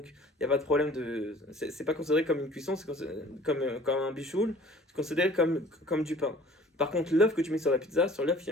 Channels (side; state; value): both; normal; correlation 0.50